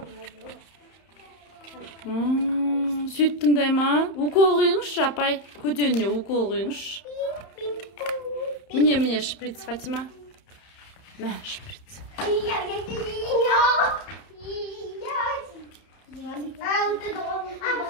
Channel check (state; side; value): late; right; 31 ms